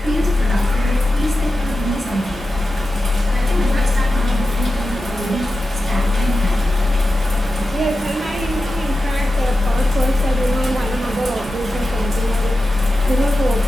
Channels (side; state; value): both; normal; correlation 0.92